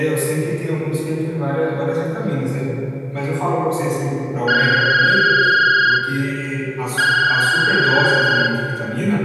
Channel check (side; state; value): both; identical; correlation 1.00